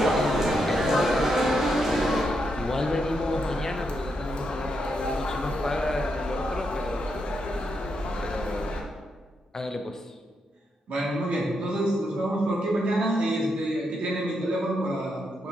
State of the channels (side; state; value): both; normal; correlation 0.81